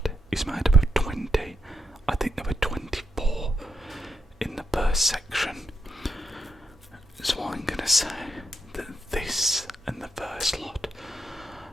is made up of 20. I think there were 24 in the first section. So I'm gonna say that this and the first lot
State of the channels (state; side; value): normal; both; correlation 0.83